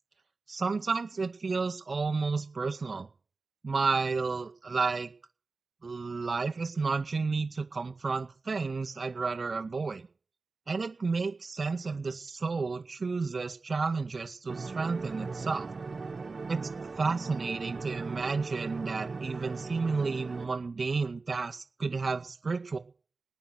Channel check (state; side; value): quieter; left; 4.0 dB